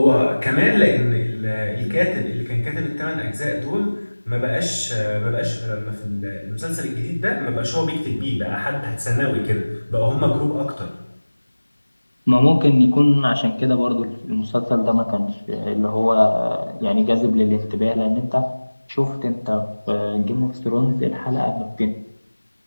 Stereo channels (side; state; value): both; inverted; correlation -1.00